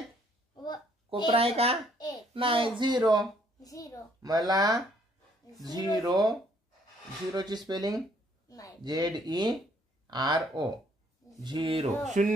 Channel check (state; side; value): normal; both; correlation 0.65